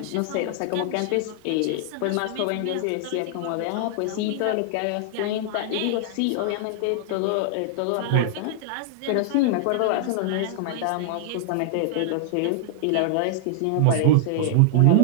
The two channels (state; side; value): different; both; correlation -0.01